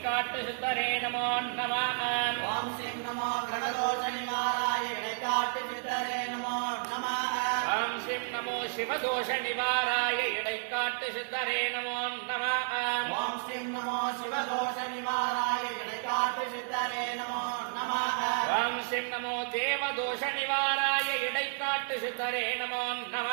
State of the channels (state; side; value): silent; left; digital silence